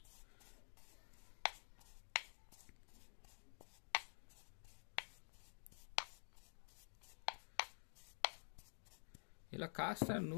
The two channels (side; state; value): right; silent; digital silence